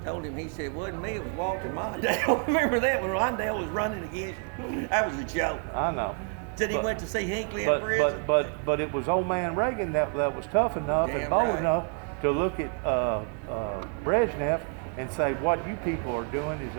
him, he said, wasn't me, it was Walter Mondale. Remember that when Mondale was running against you? That was a joke. I know. Said he went to see Hinckley in prison. But it was old man Reagan that was tough enough and Damn bold right. enough to look at Brezhnev and say, what you people are doing is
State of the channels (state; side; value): quieter; left; 39.2 dB